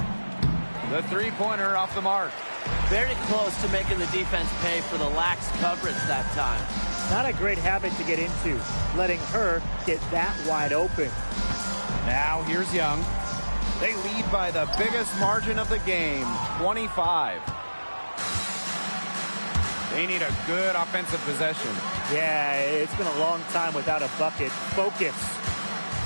The three-pointer off the mark. Very close to making the defense pay for the lax coverage that time. Not a great habit to get into, letting her get that wide open. Now here's Young. They lead by the biggest margin of the game, 25. They need a good offensive possession. Yeah, it's been a long time without a bucket. Focus.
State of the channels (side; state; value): both; inverted; correlation -1.00